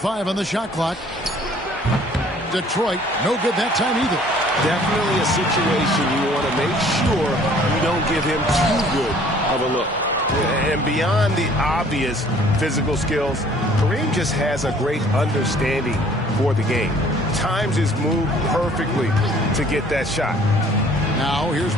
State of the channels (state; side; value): normal; both; correlation 0.55